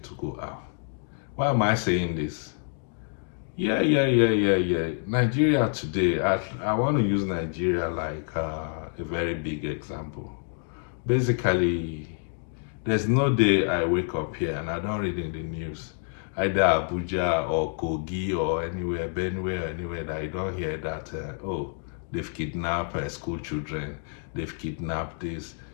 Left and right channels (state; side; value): silent; right; 60 dB below the other